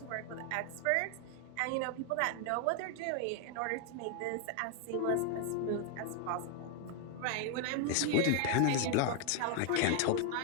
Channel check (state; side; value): different; both; correlation 0.00